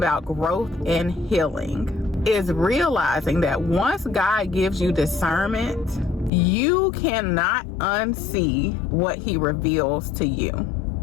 growth and healing is realizing that once God gives you discernment, you cannot unsee what he reveals to you.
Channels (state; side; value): drops out; right; at 6.3 s